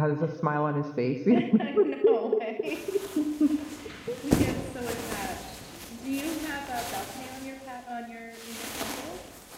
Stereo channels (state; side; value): identical; both; correlation 1.00